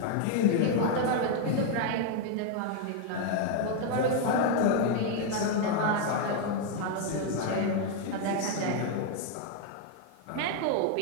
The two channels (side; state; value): both; different; correlation 0.01